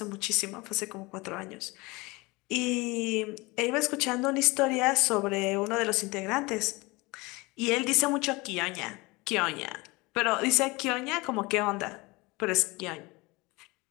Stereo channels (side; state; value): right; quieter; 24.1 dB